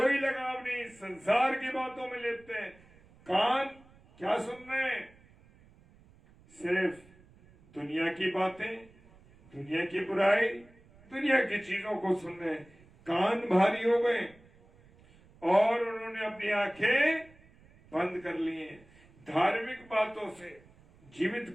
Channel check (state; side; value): noise; right; rumble, 27 dB below the sound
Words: लगाव नहीं, संसार की बातों में लेते हैं। कान क्या सुन रहे हैं? सिर्फ दुनिया की बातें, दुनिया की बुराई, दुनिया की चीजों को सुन रहे हैं। कान भारी हो गए और उन्होंने अपनी आंखें बंद कर ली हैं। धार्मिक बातों से, जीवित